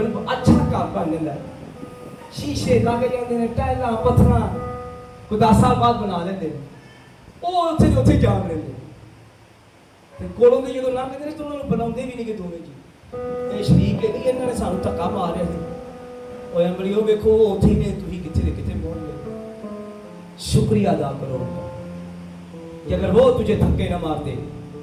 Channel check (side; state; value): both; identical; correlation 1.00